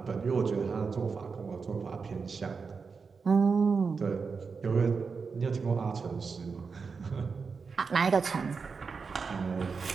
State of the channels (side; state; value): left; quieter; 5.1 dB